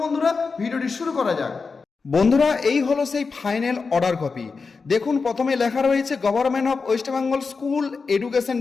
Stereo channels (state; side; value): quieter; right; 4.7 dB